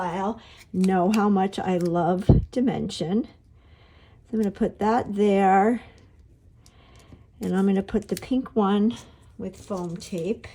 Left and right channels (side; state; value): both; identical; correlation 1.00